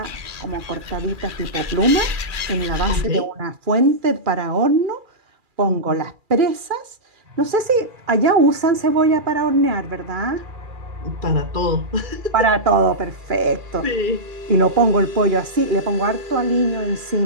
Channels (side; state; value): left; late; 2.4 ms